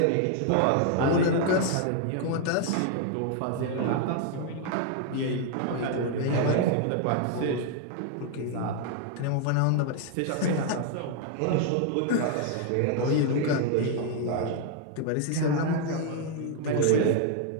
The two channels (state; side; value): different; both; correlation 0.00